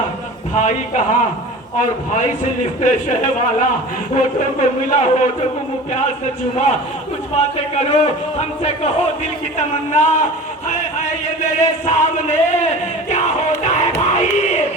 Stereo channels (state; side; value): normal; both; correlation 0.37